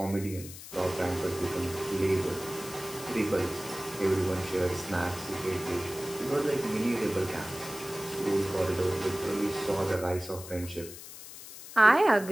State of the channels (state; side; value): noise; left; hiss, 14 dB below the sound